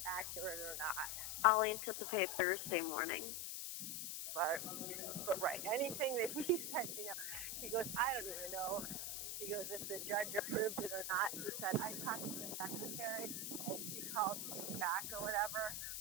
accurate or not. I'll anticipate Thursday morning. But right, anything that he said, he goes, I don't even know. He goes, if the judge approved it or not. He said, I talked to the secretary, and she called me back or whatever.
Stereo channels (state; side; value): noise; left; hiss, 3 dB below the sound